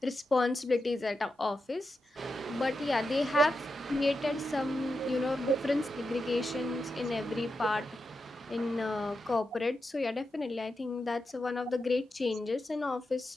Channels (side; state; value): both; normal; correlation 0.88